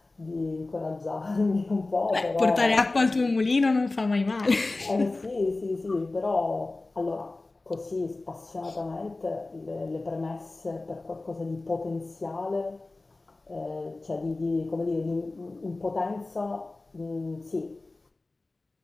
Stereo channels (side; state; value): right; quieter; 3.2 dB